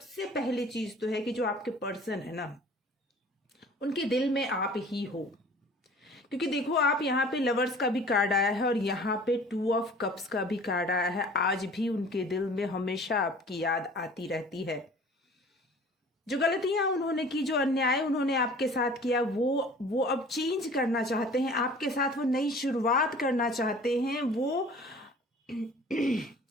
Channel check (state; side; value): normal; both; correlation 0.47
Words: पहली चीज तो है कि जो आपके पर्सन है ना, उनके दिल में आप ही हो। क्योंकि देखो, आप यहाँ पे लवर्स का भी कार्ड आया है और यहाँ पे 2 ऑफ कप्स का भी कार्ड आया है। आज भी उनके दिल में हमेशा आपकी याद आती रहती है। जो गलतियां उन्होंने की, जो अन्याय उन्होंने आपके साथ किया, वो अब चेंज करना चाहते हैं आपके साथ। वो नई शुरुआत करना चाहते हैं। वो